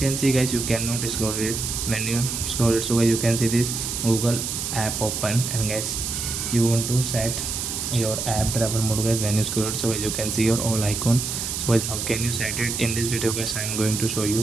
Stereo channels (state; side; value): noise; right; hiss, 3 dB below the sound